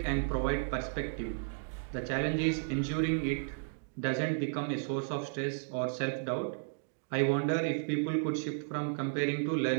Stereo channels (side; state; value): left; silent; digital silence